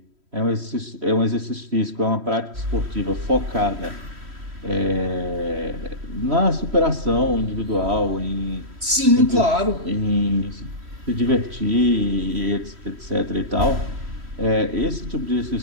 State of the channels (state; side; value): late; left; 3.1 ms